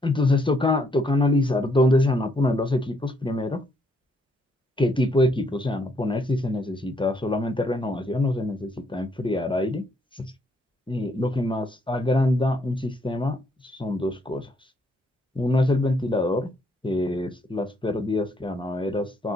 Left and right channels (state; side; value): normal; both; correlation 0.71